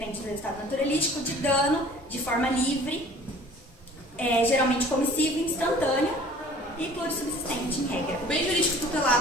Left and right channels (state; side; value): normal; both; correlation 0.49